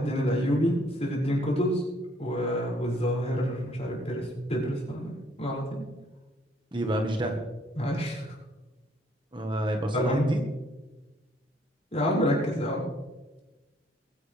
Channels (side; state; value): both; normal; correlation 0.64